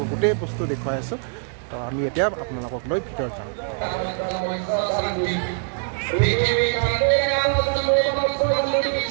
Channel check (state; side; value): silent; left; 63 dB below the other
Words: গোটেই বস্তু দেখুৱাই আছোঁ। তো আমি এতিয়া আপোনালোকক লৈ ভিতৰত যাম।